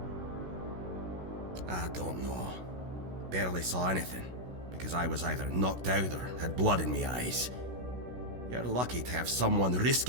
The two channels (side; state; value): left; late; 16 ms